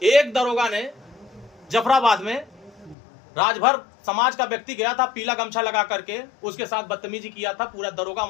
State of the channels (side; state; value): right; drops out; at 3.0 s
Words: दरोगा ने, जफराबाद में राजभर समाज का व्यक्ति गया था, पीला गमछा लगा करके उसके साथ बदतमीजी किया था, पूरा दरोगा